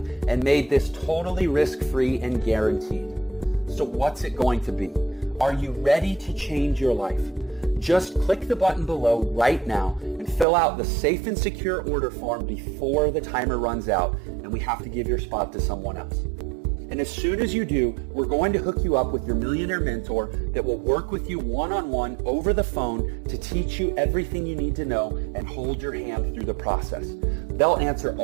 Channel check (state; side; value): drops out; left; at 10.5 s